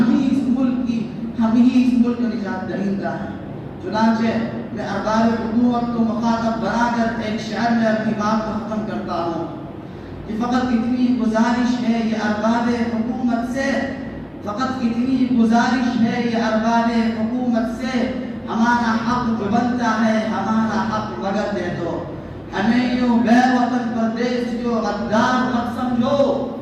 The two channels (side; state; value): both; identical; correlation 1.00